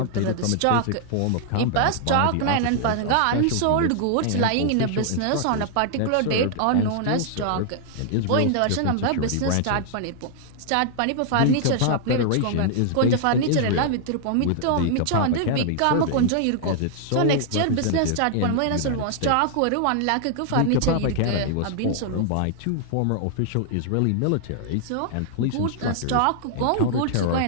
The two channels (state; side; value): different; both; correlation -0.01